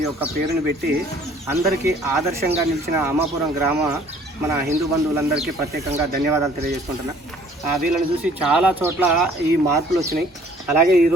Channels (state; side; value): normal; both; correlation 0.56